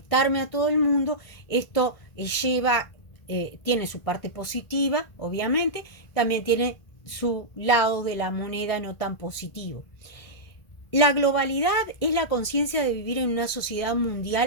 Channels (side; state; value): right; late; 1.6 ms